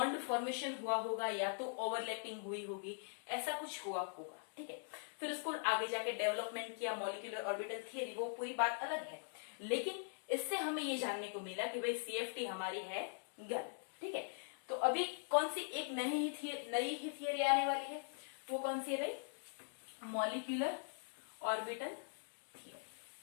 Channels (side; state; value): right; silent; digital silence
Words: फॉर्मेशन हुआ होगा या तो ओवरलैपिंग हुई होगी, ऐसा कुछ हुआ होगा। ठीक है, फिर उसको आगे जाके डेवलपमेंट किया मॉलिक्यूलर ऑर्बिटल थियरी, वो पूरी बात अलग है। लेकिन इससे हमें ये जानने को मिला कि भाई CFT हमारी है गलत। ठीक है, तो अभी कौन सी एक नई ही थियरी आने वाली है, वो कौन सी है भाई? Molecular orbital theory.